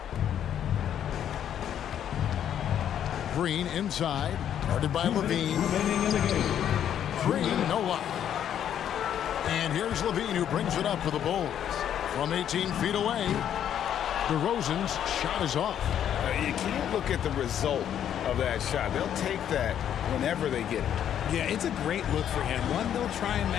Green inside, guarded by Levine. Green, no luck. And here's Levine, who brings it up for the Bulls. From 18 feet away, DeRozan's shot is off. You can't look at the result of that shot. They'll take that whenever they get it. Yeah, it's a great look for him. One they'll try and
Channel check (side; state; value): right; quieter; 9.8 dB